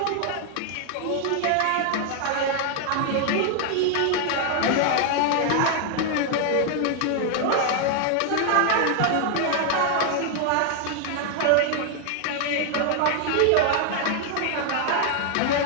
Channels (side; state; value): both; different; correlation 0.00